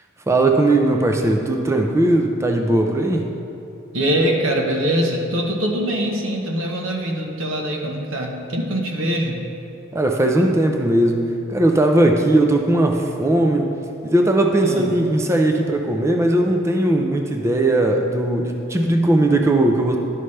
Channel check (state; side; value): normal; both; correlation 0.69